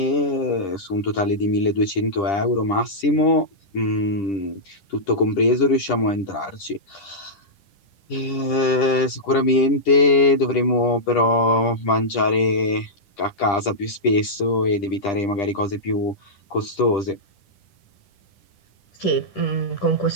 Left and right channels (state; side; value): late; right; 10 ms